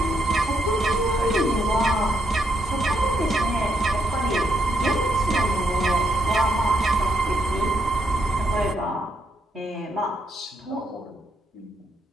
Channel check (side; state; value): both; normal; correlation 0.76